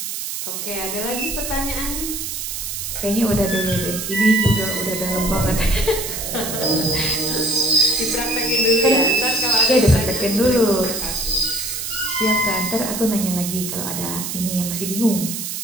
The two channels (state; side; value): noise; right; hiss, 5 dB below the sound